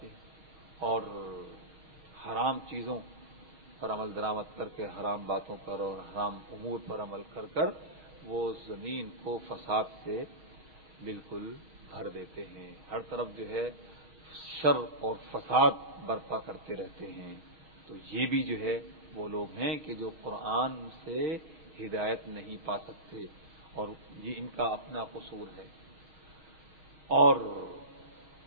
ہیں اور حرام چیزوں پر عمل درآمد کر کے حرام باتوں پر اور حرام امور پر عمل کر کر وہ زمین کو فساد سے بالکل بھر دیتے ہیں، ہر طرف جو ہے شر اور فساد برپا کرتے رہتے ہیں۔ تو یہ بھی جو ہے وہ لوگ ہیں کہ جو قرآن سے ہدایت نہیں پا سکتے، اور یہ ان کا اپنا قصور ہے۔ اور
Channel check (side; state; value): left; late; 6.4 ms